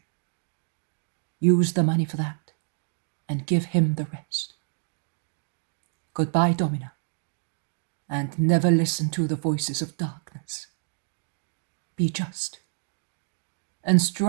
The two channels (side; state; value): left; silent; digital silence